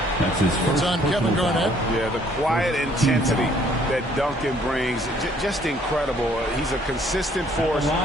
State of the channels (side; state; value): both; normal; correlation 0.62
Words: That's his first. It's on Kevin Garnett. Yeah, the quiet intensity that Duncan brings, just incredible. He's a consistent force